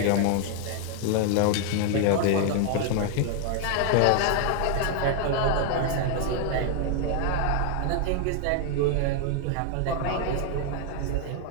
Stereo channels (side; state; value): both; different; correlation 0.01